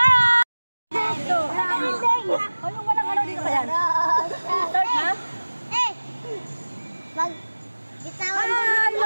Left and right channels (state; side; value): inverted; both; correlation -1.00